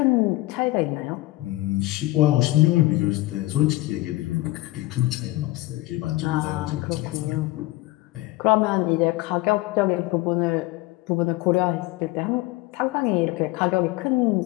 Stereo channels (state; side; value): quieter; right; 18.9 dB